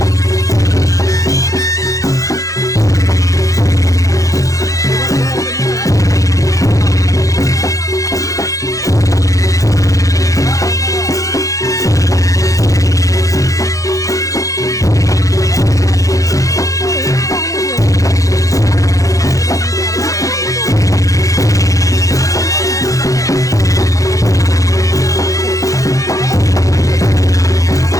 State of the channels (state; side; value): late; right; 0.16 ms